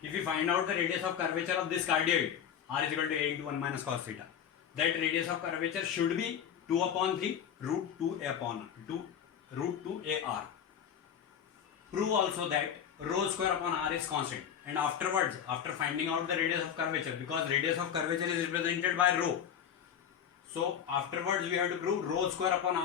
if we find out the radius of curvature of this cardioid, r is equal to a into 1 minus cos theta. That radius of curvature should be 2 upon 3 root 2 upon 2 root 2 ar. Prove also that rho square upon r is constant. And afterwards, after finding out the radius of curvature, because radius of curvature is represented by rho, so afterwards we have to prove rho square upon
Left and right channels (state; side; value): quieter; right; 8.7 dB